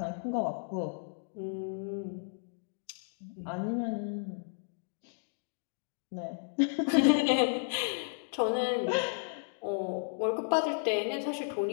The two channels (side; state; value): right; silent; digital silence